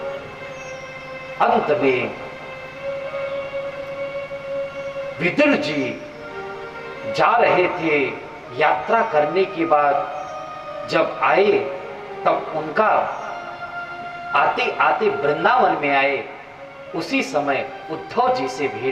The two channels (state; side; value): identical; both; correlation 1.00